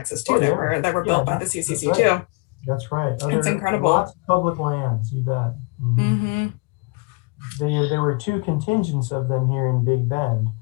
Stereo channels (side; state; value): right; quieter; 29.5 dB